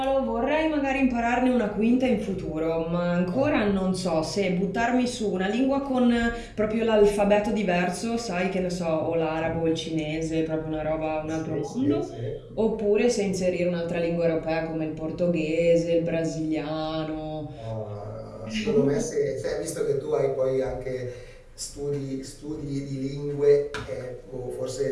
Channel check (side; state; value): both; identical; correlation 1.00